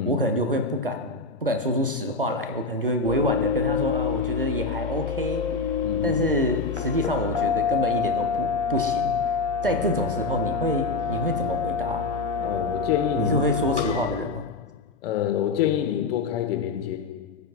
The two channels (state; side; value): quieter; right; 3.5 dB